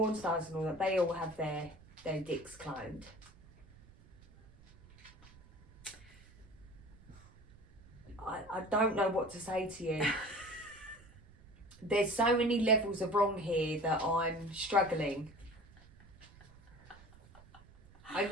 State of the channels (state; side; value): noise; right; rumble, 23 dB below the sound